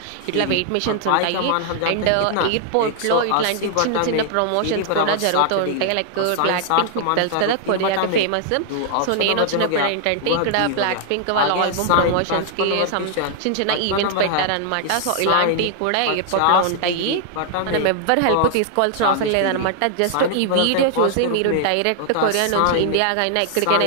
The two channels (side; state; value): both; different; correlation 0.00